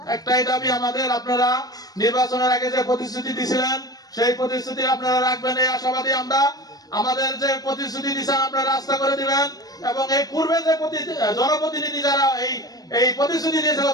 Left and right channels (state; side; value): late; right; 0.18 ms